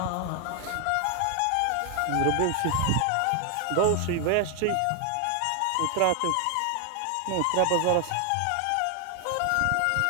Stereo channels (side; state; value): both; different; correlation 0.00